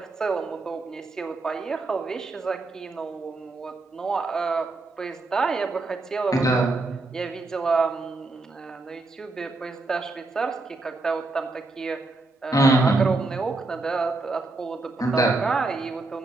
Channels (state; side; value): quieter; left; 3.2 dB